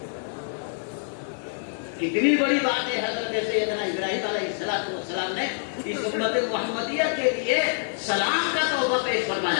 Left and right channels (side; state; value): right; silent; digital silence